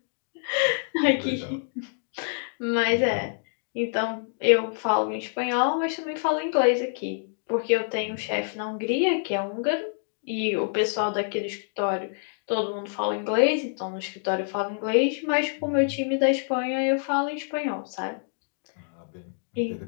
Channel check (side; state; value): right; silent; digital silence